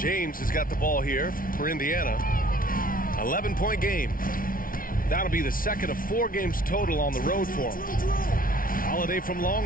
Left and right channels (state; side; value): late; right; 0.41 ms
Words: has got the ball here for Indiana. 11-point game. That'll be the second of 4 games total on the road for him. Holiday from